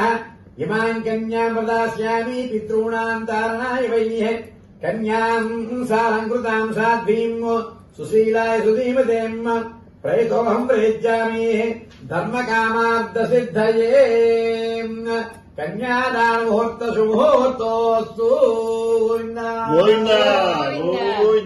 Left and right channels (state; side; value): identical; both; correlation 1.00